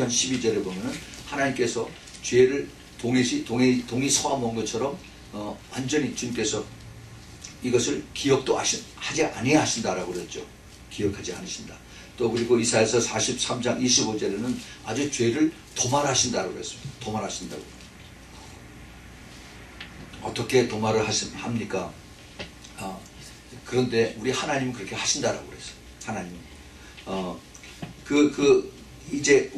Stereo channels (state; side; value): identical; both; correlation 1.00